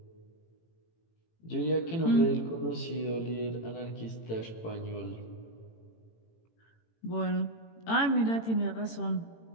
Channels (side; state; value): right; late; 18 ms